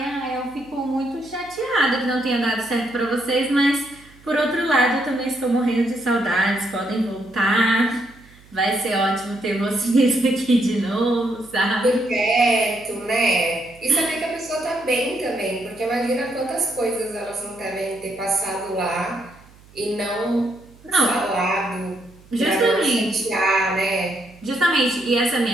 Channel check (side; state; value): right; noise; hum, 25 dB below the sound